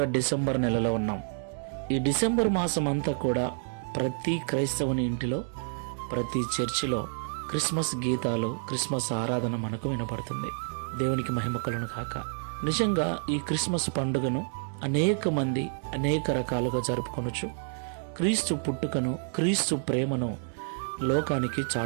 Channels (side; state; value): left; silent; digital silence